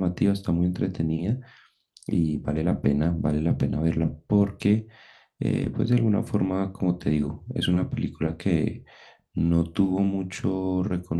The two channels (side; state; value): both; identical; correlation 1.00